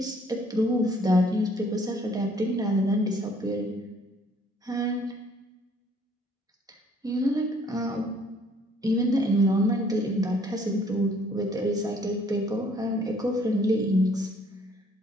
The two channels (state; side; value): normal; both; correlation 0.61